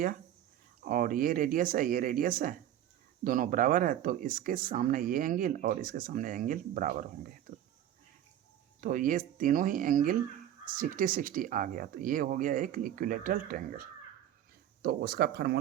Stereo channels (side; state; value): left; quieter; 11.4 dB